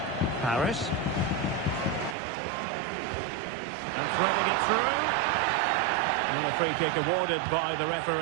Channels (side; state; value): left; drops out; at 2.1 s